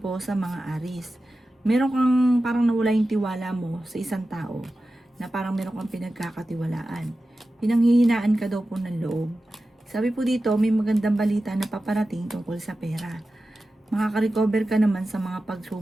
sa mga Aries. Meron kang parang nawala yung tiwala mo sa isang tao na parang meron kang pinagkakatiwalaan. Pinanghihinaan ka daw po ng loob. Sabi po dito, may magandang balita na paparating tungkol sa pera. Makaka-recover ka naman sa mga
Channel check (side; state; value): both; normal; correlation 0.94